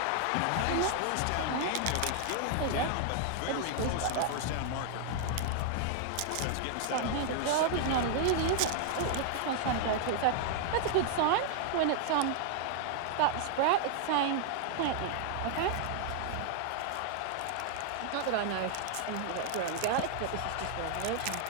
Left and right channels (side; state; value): both; different; correlation 0.00